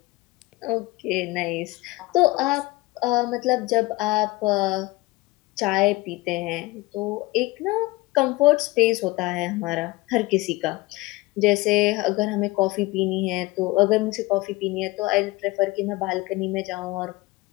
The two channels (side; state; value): right; quieter; 21.2 dB